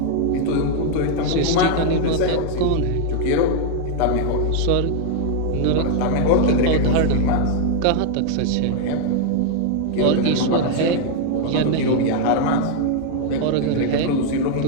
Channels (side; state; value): both; different; correlation 0.00